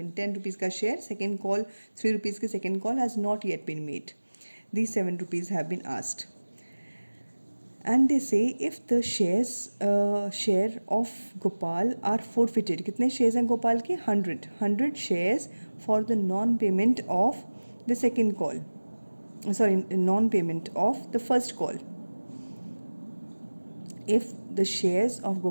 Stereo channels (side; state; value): both; inverted; correlation -1.00